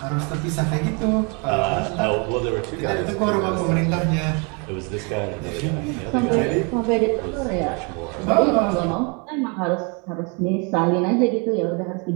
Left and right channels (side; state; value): left; quieter; 33.2 dB